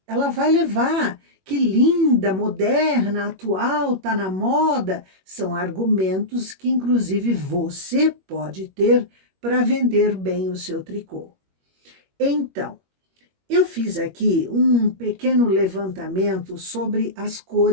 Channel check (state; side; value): late; left; 21 ms